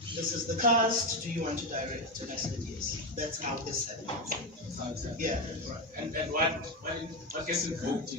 This is the cast. Do you want to direct? And I said yes. That's how this happened. Yeah. Right. And what gets invoked in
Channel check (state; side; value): normal; both; correlation 0.12